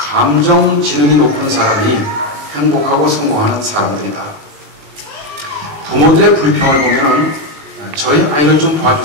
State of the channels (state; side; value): late; left; 20 ms